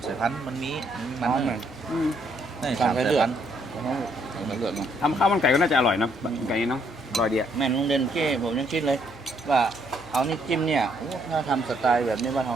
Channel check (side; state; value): left; noise; hum, 22 dB below the sound